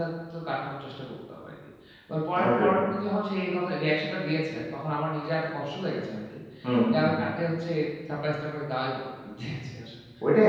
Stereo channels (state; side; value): identical; both; correlation 1.00